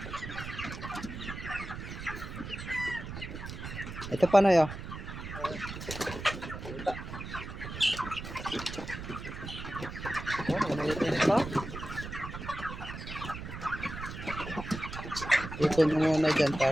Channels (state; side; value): noise; right; rumble, 9 dB below the sound